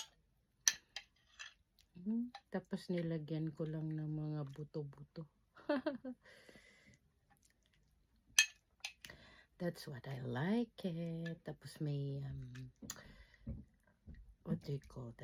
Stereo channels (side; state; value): both; identical; correlation 1.00